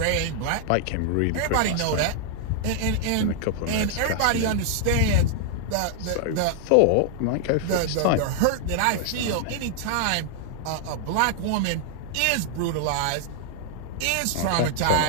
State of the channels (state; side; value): different; both; correlation 0.00